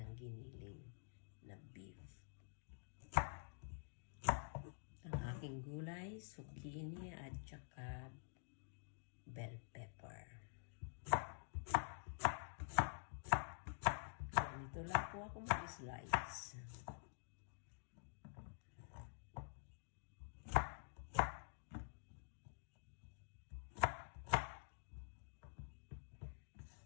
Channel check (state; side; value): silent; right; digital silence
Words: ng giniling na beef. Ang aking gulay, zucchini at saka bell pepper. Ganito lang po ako mag-slice.